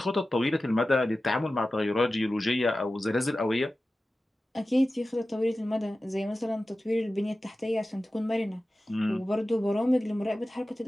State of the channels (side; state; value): both; normal; correlation 0.95